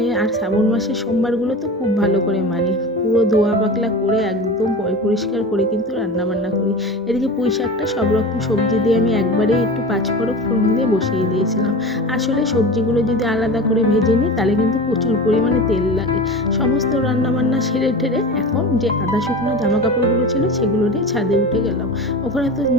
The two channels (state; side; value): normal; both; correlation 0.31